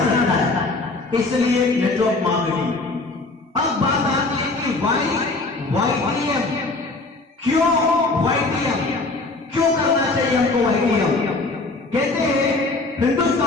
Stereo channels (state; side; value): quieter; right; 3.4 dB